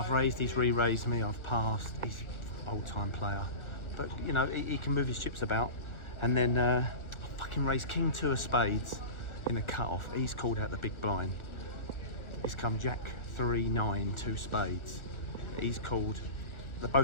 raised, he's re-raised me, I've passed, he's an old-time player. But, you know, he can move his chips about. And then I fucking raised King 2 of spades in a cut-off. He's called out the big blind. He's come Jack 3, 9, 2 spades. He's called,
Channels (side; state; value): right; late; 1.4 ms